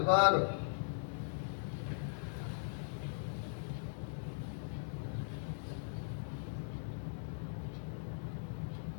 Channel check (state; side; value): silent; right; digital silence